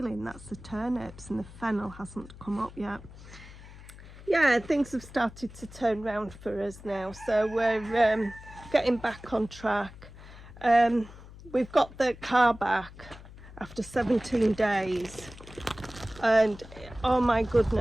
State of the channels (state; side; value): noise; left; hum, 17 dB below the sound